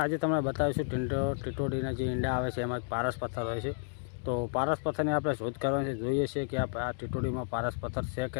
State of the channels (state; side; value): silent; right; digital silence